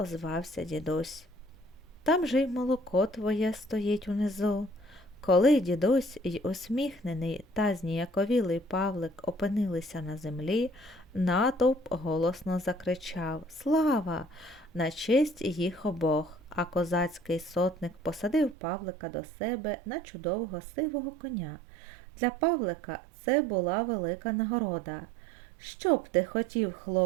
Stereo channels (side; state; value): left; drops out; at 18.6 s